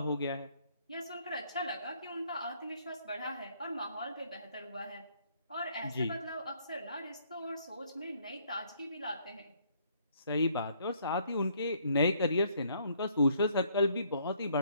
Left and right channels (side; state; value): both; inverted; correlation -0.66